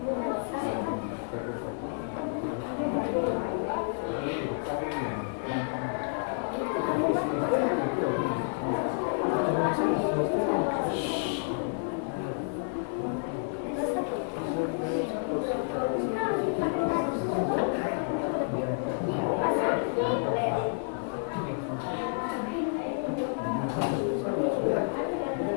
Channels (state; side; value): silent; right; 58 dB below the other